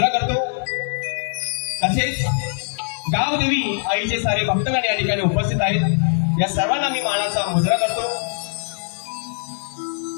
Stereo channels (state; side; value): silent; right; digital silence